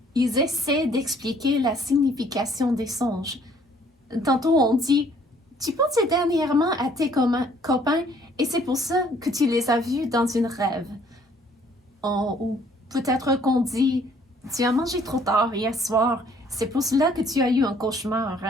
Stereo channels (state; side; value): normal; both; correlation 0.61